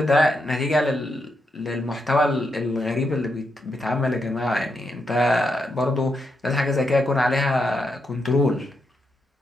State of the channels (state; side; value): normal; both; correlation 0.83